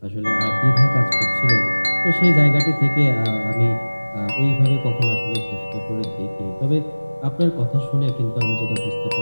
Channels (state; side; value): inverted; both; correlation -1.00